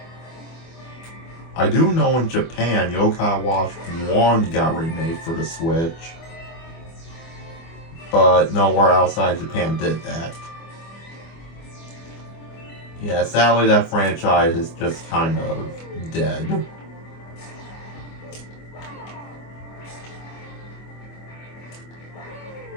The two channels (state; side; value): late; right; 24 ms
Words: I do know in Japan, Yokai Watch 1 got remade for the Switch, but nowhere outside Japan did that. Yeah, sadly that franchise is just kind of dead.